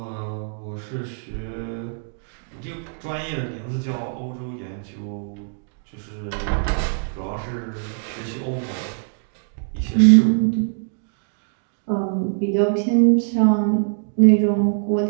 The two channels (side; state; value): left; silent; digital silence